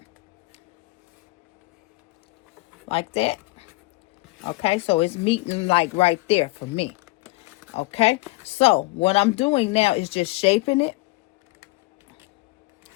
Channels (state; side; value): quieter; right; 22.8 dB